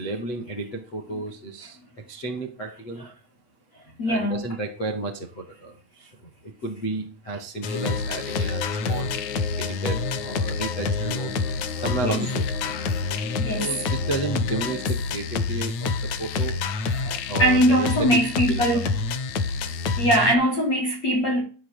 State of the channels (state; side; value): late; right; 9.2 ms